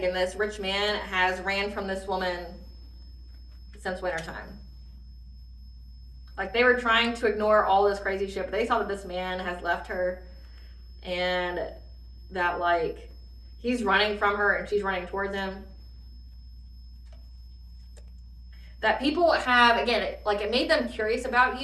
this rich man, has ran from this woman since wintertime. Like, they were trying to ignore all this crazy shit, but they saw that this man has left her and that, like, he's running from her and she's running towards him. That people have, again, it made them curious about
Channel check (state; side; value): identical; both; correlation 1.00